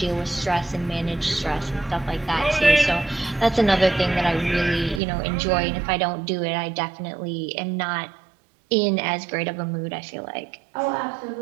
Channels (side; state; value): left; drops out; at 5.0 s